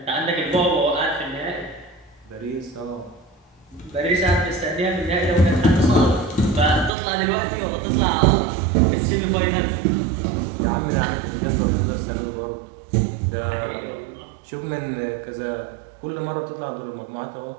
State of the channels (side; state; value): left; drops out; at 6.9 s